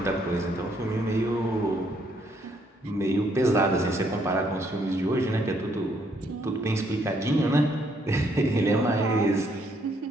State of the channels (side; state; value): both; normal; correlation 0.70